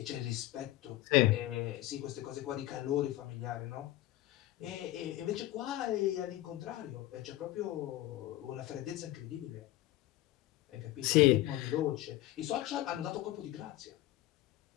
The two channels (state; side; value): quieter; right; 15.9 dB